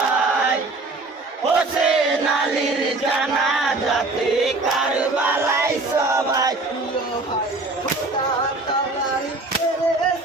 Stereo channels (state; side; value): quieter; left; 3.2 dB